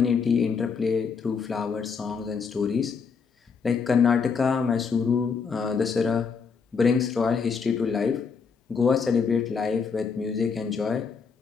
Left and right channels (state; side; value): quieter; right; 5.6 dB